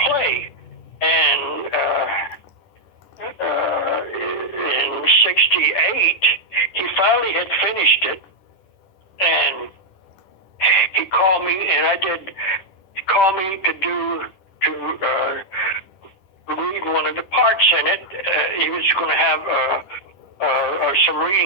play, and in '68 he finally had finished it, and he called me, and he called me to read one of the parts in it. He was going to have some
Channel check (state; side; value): late; right; 10 ms